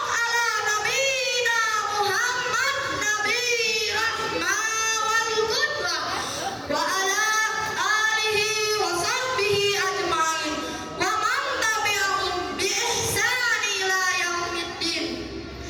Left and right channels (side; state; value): both; identical; correlation 1.00